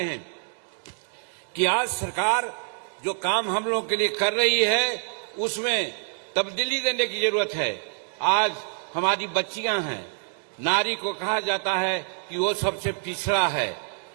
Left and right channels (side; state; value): left; silent; 61 dB below the other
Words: हैं कि आज सरकार जो काम हम लोग के लिए कर रही है उसमें तब्दीली देने की जरूरत है। आज हमारी बच्चियां हैं, नारी को कहा जाता है कि वो सबसे पिछड़ा है।